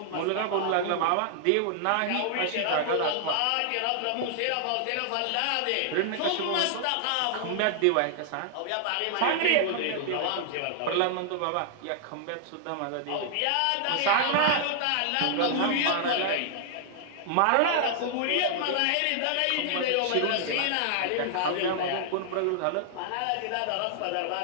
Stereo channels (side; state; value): both; different; correlation -0.01